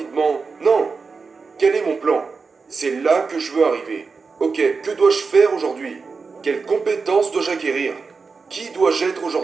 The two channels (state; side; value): quieter; left; 4.7 dB